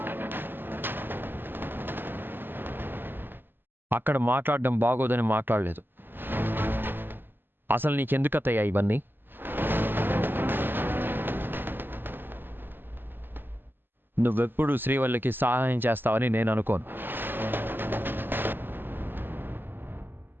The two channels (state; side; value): late; left; 0.095 ms